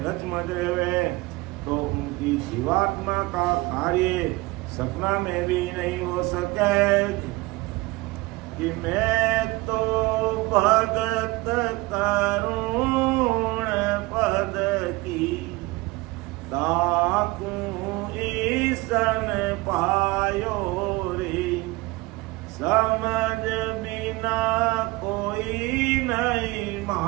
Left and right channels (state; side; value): quieter; left; 22.2 dB